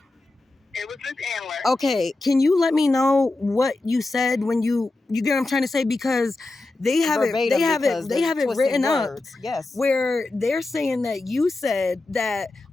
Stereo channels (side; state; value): right; quieter; 3.0 dB